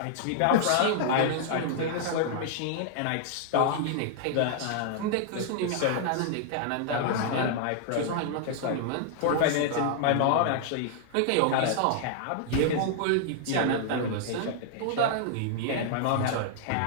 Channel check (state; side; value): different; both; correlation -0.01